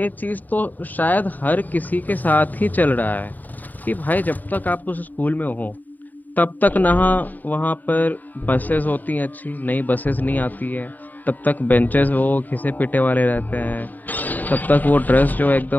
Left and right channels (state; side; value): late; right; 0.085 ms